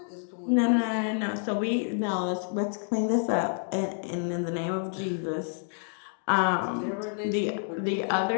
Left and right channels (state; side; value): silent; right; 59 dB below the other